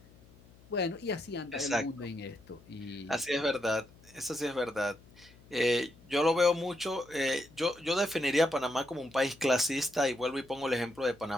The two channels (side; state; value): left; noise; hum, 25 dB below the sound